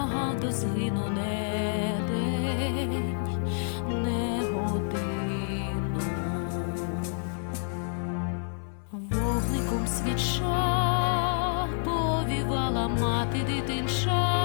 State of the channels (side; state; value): right; silent; 59 dB below the other